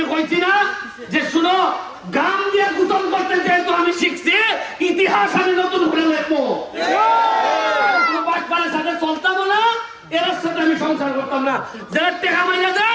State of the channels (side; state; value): both; identical; correlation 1.00